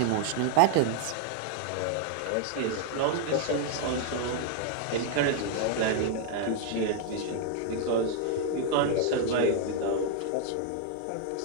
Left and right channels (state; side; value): different; both; correlation 0.00